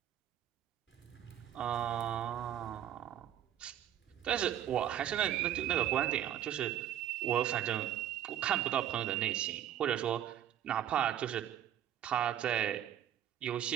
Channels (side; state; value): left; quieter; 11.1 dB